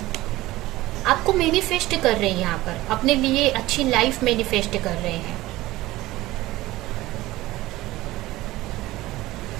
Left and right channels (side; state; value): left; quieter; 17.7 dB